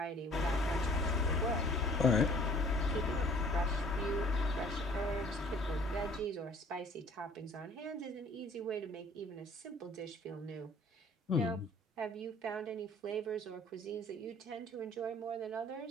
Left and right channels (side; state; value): both; normal; correlation 0.54